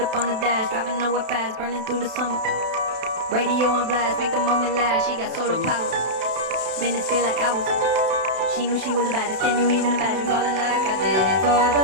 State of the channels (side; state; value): left; late; 32 ms